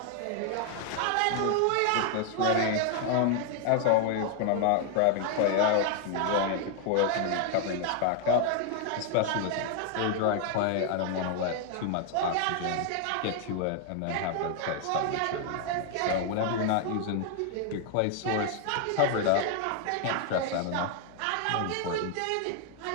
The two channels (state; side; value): different; both; correlation 0.00